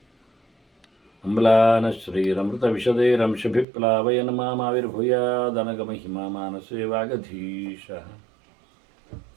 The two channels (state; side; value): drops out; left; at 3.7 s